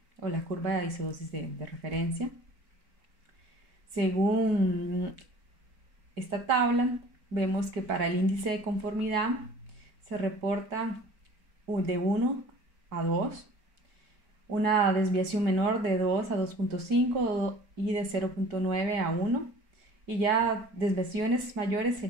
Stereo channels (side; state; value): left; late; 4.7 ms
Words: o la curva de isodosis de referencia. Según esta tabla, vemos que para el índice de conformidad se reporta de 1 a 2, una desviación menor de 2 a 2.5 y de 0.9 a 1, y ya desviaciones mayores